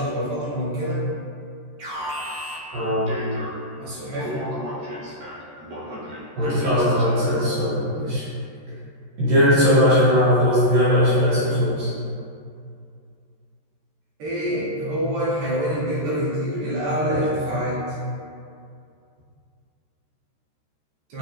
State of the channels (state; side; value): late; left; 13 ms